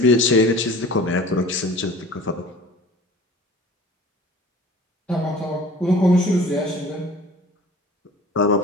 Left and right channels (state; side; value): normal; both; correlation 0.44